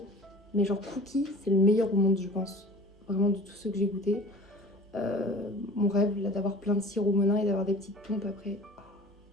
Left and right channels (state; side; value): normal; both; correlation 0.43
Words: Mais genre cookie, c'est le meilleur au monde, je pense. Vraiment de tous ceux que j'ai goûtés. Mon rêve, là, d'avoir plein de sirop Monin et d'avoir des petites pompes après. Oh,